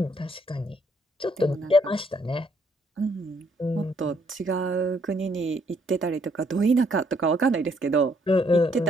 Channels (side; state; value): both; normal; correlation 0.69